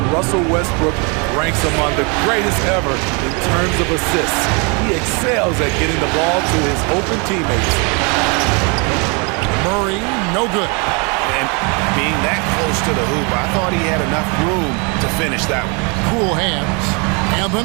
Russell Westbrook ranks among the greatest ever in terms of assists. He excels at getting the ball to his open teammates. Murray, no good. And being that close to the hoop, I thought he had enough room to finish that one. Cool hands. And the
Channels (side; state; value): left; quieter; 32.8 dB